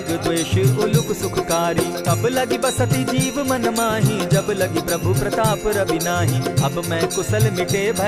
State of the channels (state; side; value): identical; both; correlation 1.00